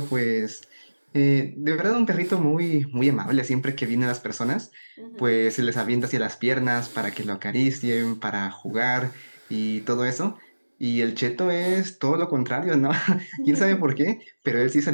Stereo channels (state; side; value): inverted; both; correlation -1.00